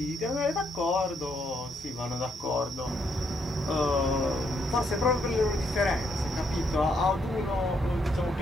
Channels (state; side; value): normal; both; correlation 0.74